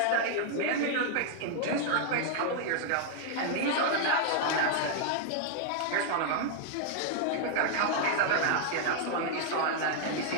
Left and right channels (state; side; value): different; both; correlation 0.00